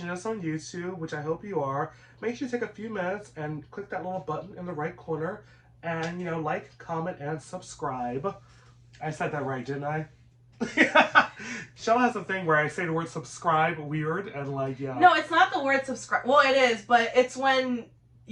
us on YouTube, which I hope you are, make sure you take a few minutes and click that little button in the right corner and, like, comment, and subscribe. I said that right, didn't I? Shella has a thing where I say the word subscribe weird and, yeah. No, it's not the word subscribe. Well, it is, but it's when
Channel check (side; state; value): both; identical; correlation 1.00